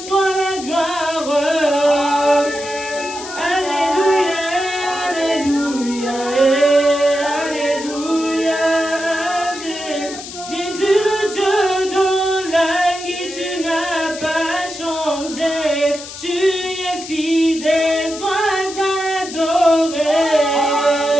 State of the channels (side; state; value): left; noise; hiss, 12 dB below the sound